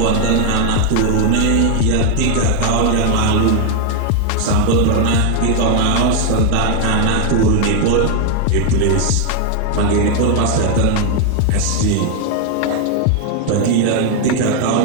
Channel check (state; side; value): different; both; correlation 0.00